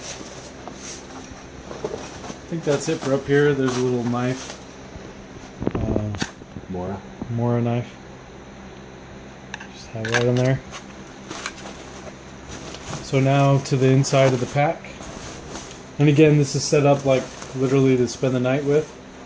I think that's it for up here. There's a little knife. Mora knife. Just have that in there. So now to the inside of the pack. And again, this is set up like literally to spend the night with,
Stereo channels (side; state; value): both; identical; correlation 1.00